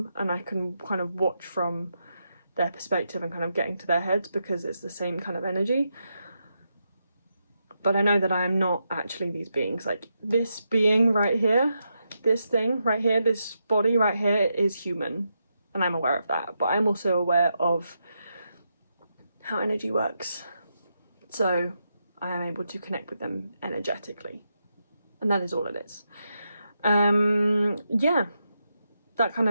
and I can kind of watch from their perspective and kind of get into their heads because it's the same kind of energy. But I know that I am not actually these beings. Like, this being right here, this thing right here, this body right here is human, and I'm aware of that. But I'm also aware of how energy works. So I am able to connect with them energetically, and that is all it is. Yeah, that kind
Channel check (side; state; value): both; inverted; correlation -0.84